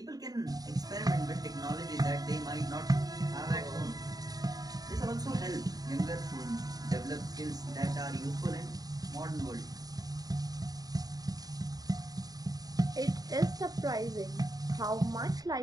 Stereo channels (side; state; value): left; late; 0.18 ms